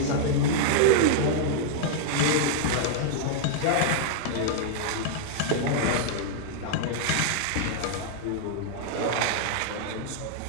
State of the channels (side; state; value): both; different; correlation -0.01